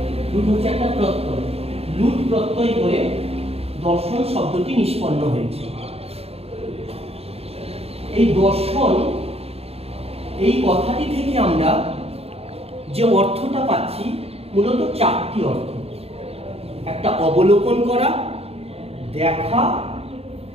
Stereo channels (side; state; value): left; late; 0.29 ms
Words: লুট হচ্ছে একটা প্রত্যয়, লুট প্রত্যয় করে দর্শন শব্দটি নিষ্পন্ন হয়েছে। এই দর্শন এই কথাটি থেকে আমরা যে অর্থটা পাচ্ছি মূলত চারটি অর্থ। একটা অবলোকন করা, দেখা,